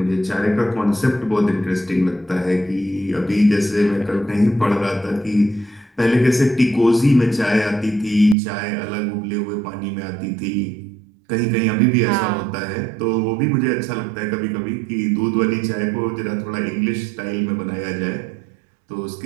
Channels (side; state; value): left; drops out; at 8.3 s